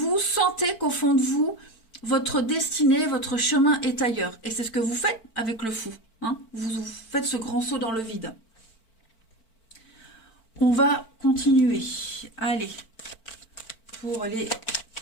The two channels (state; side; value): late; right; 4.5 ms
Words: sentez qu'au fond de vous, votre destinée, votre chemin est ailleurs. Et c'est ce que vous faites avec le fou. Hein. Vous faites ce grand saut dans le vide. On va continuer. Allez, pour les